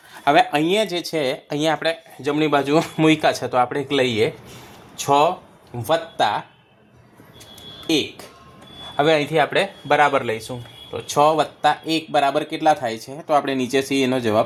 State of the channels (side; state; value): both; identical; correlation 1.00